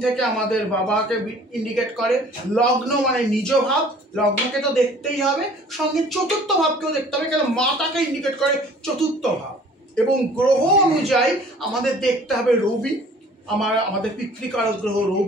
থেকে আমাদের বাবাকে ইন্ডিকেট করে। লগ্ন মানে নিজ ভাব, লগ্নকে তো দেখতেই হবে, সঙ্গে চতুর্থ ভাবকেও দেখতে হবে, কেন মাতাকে ইন্ডিকেট করে চতুর্থ ভাব। এবং গ্রহ অনুযায়ী আমাদের দেখতে হবে রবি, আমাদের পিতৃকারক গ্রহ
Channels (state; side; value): normal; both; correlation 0.51